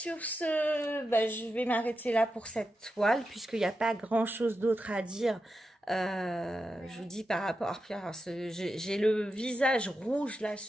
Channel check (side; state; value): both; normal; correlation 0.89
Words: ce, je vais m'arrêter là pour cette toile, puisqu'il n'y a pas grand-chose d'autre à dire. Je vous dis par rapport à j'ai le visage rouge là